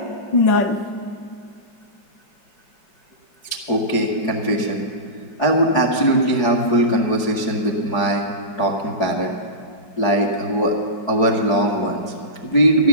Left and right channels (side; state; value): right; late; 4.8 ms